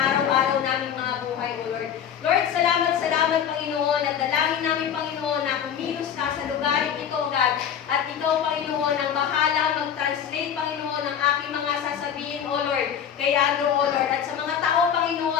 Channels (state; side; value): quieter; right; 8.6 dB